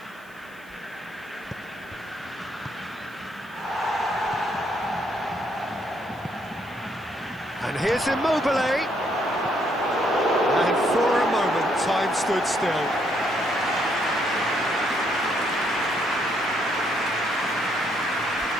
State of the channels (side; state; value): right; noise; hiss, 27 dB below the sound